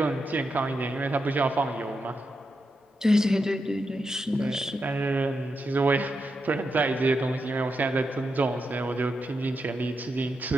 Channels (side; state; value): both; normal; correlation 0.86